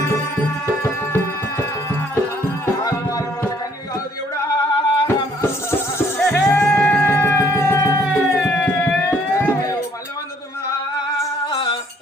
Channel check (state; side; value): normal; both; correlation 0.63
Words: దేవుడా మళ్ళీ వందుతున్నా